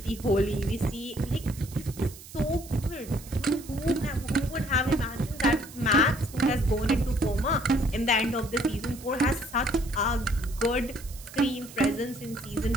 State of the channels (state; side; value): noise; right; hiss, 17 dB below the sound